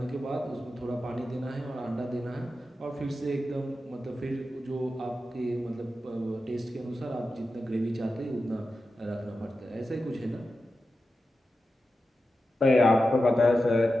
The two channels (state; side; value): normal; both; correlation 0.91